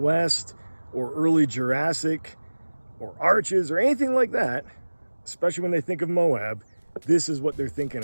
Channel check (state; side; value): inverted; both; correlation -1.00